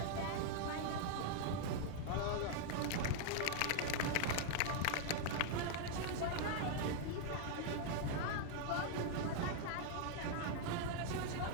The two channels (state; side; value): different; both; correlation 0.00